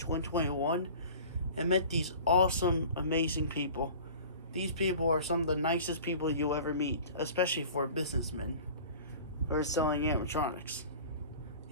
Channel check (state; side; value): inverted; both; correlation -0.42